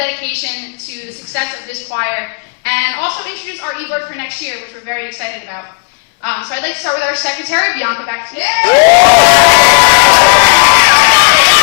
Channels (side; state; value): right; quieter; 36.7 dB